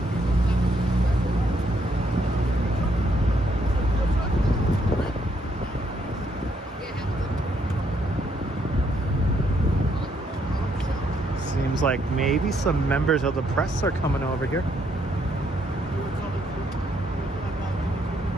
Seems like maybe some members of the press are coming over here.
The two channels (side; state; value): both; normal; correlation 0.73